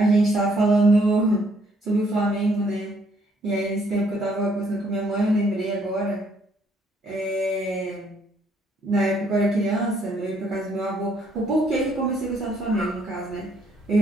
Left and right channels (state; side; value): normal; both; correlation 0.67